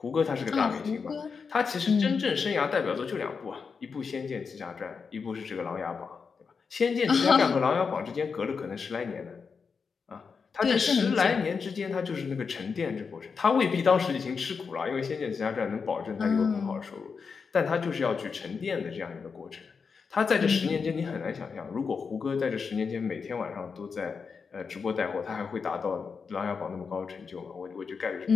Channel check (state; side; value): quieter; right; 5.5 dB